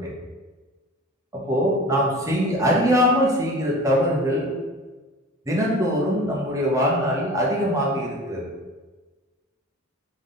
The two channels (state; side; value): normal; both; correlation 0.38